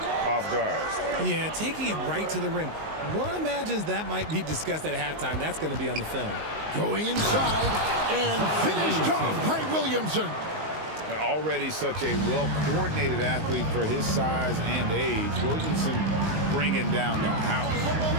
off guard. Yeah, taking it right to the rim. One imagines that might be discussed at halftime. That's going to be on the film. Going inside and finished off by Williamson. Already such a well-coordinated athlete for his size and age. Williamson bringing down the house.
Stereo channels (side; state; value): left; late; 19 ms